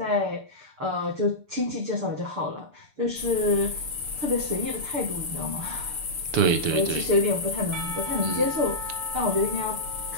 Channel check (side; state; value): left; late; 6.8 ms